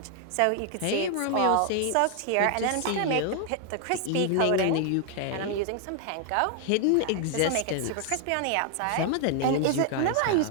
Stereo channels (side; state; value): both; different; correlation 0.00